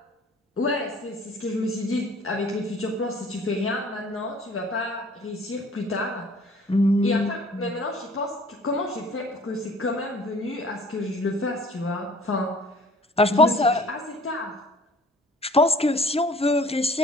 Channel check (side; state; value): both; normal; correlation 0.52